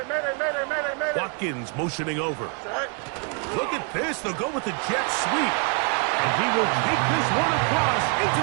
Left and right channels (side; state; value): left; quieter; 38.1 dB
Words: Watkins motioning over. Look at this. They'll go with the jet sweep. And he will take this one across into